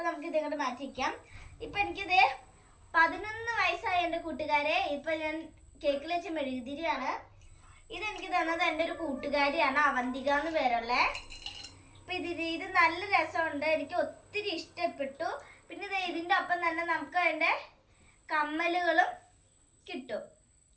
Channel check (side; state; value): both; identical; correlation 1.00